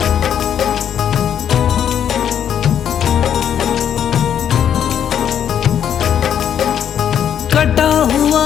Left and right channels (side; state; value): right; quieter; 9.2 dB